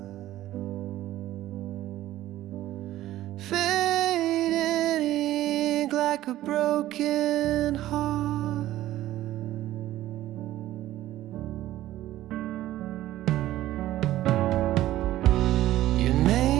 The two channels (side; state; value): left; quieter; 14.5 dB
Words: fading ink like a broken heart.